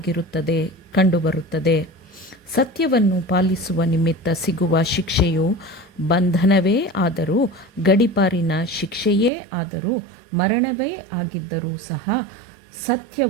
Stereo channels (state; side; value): drops out; left; at 9.3 s